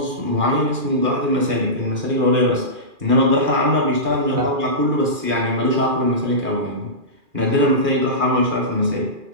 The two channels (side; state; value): left; late; 2.4 ms